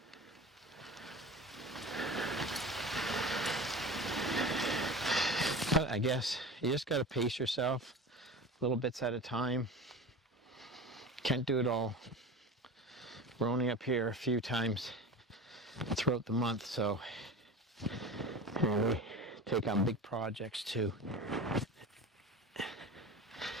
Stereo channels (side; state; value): both; normal; correlation 0.33